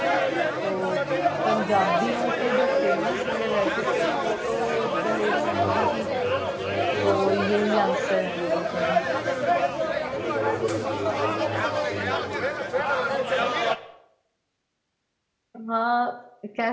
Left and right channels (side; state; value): both; identical; correlation 1.00